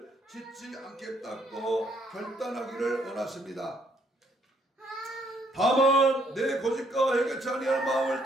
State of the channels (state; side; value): normal; both; correlation 0.68